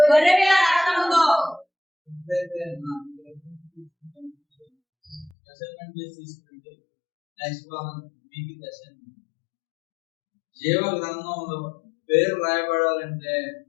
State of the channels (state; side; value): drops out; right; at 5.3 s